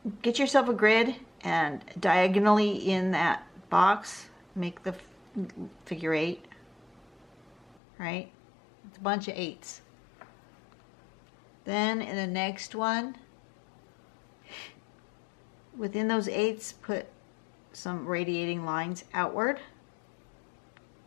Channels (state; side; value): drops out; right; at 7.8 s